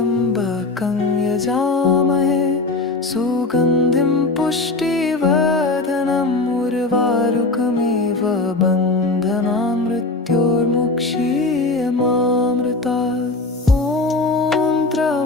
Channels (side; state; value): right; quieter; 3.3 dB